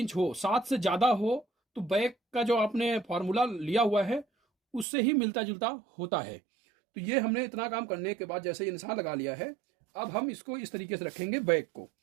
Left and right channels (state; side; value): drops out; left; at 4.9 s